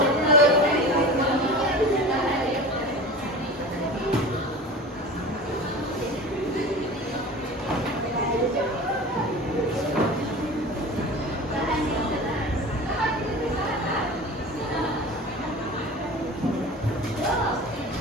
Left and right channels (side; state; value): both; normal; correlation 0.35